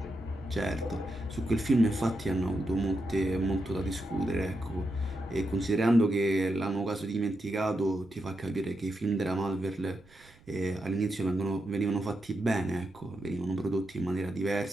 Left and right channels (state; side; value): noise; right; rumble, 28 dB below the sound